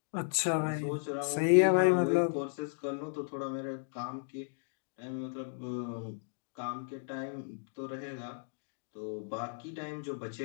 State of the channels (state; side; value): silent; right; digital silence